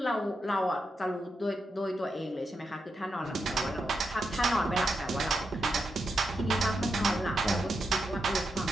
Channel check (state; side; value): normal; both; correlation 0.85